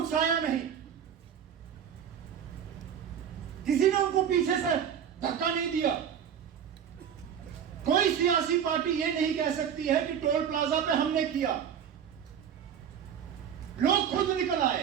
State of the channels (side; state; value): left; quieter; 8.5 dB